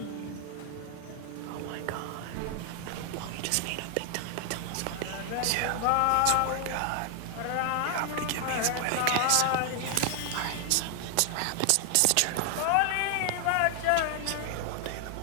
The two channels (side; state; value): both; different; correlation 0.00